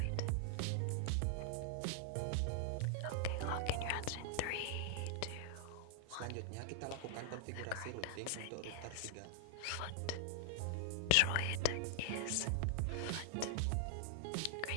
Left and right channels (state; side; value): different; both; correlation -0.01